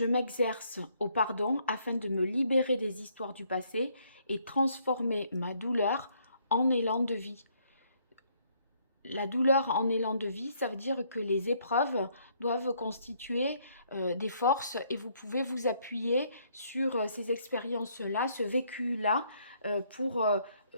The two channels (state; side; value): inverted; both; correlation -0.68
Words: m'exerce au pardon afin de me libérer des histoires du passé et transformer ma douleur en élan de vie. La douleur en élan de vie, ça veut dire que les épreuves doivent constituer des forces et vous pouvez vous appuyer sur ces expériences-là, ce vécu-là,